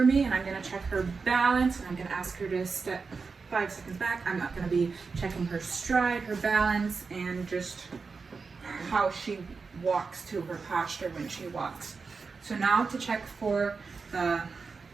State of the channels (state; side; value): quieter; left; 4.8 dB